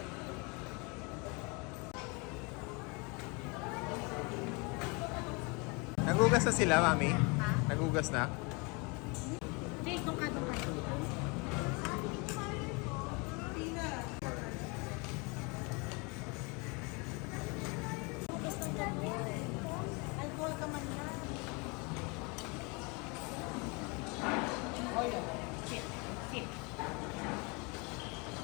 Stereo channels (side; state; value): right; quieter; 29.7 dB